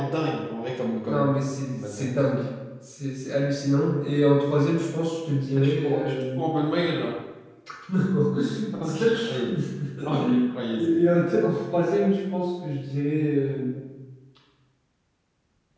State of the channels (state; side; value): identical; both; correlation 1.00